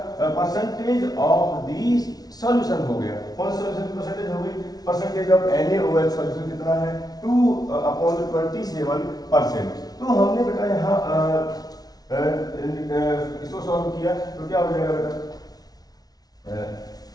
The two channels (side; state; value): right; late; 0.19 ms